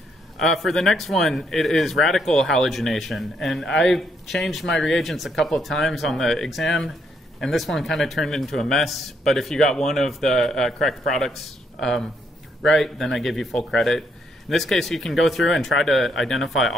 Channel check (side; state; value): both; normal; correlation 0.73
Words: For the next one, it is radical halogenation. And I changed my reagents a couple of times on the exam, and this one kind of turned into a mess. But if you got one of the correct products right, then I give you full credit. In this case, you can go through and try to identify